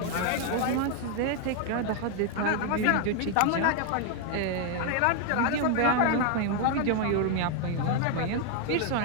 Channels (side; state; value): both; different; correlation 0.01